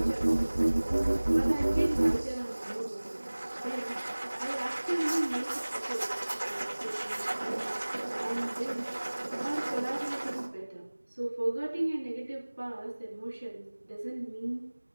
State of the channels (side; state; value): both; inverted; correlation -1.00